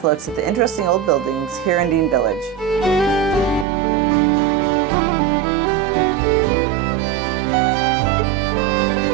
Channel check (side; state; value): left; drops out; at 3.7 s